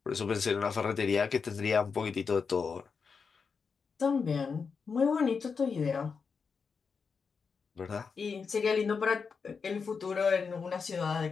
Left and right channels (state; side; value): quieter; right; 5.5 dB